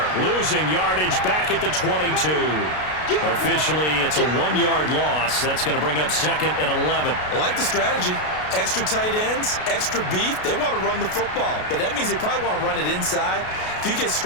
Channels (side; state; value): right; late; 33 ms